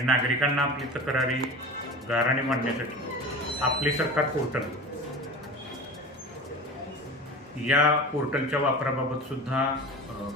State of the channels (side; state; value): both; normal; correlation 0.33